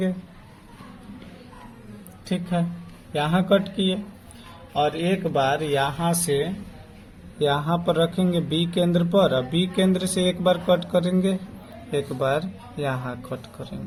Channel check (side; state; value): both; identical; correlation 1.00